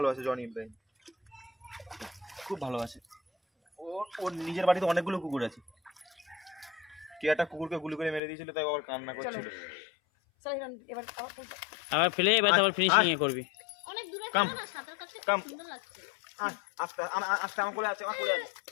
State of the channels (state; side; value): drops out; right; at 8.2 s